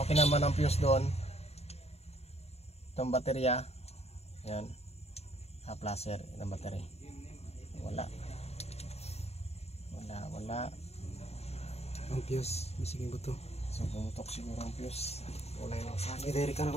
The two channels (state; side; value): late; right; 0.30 ms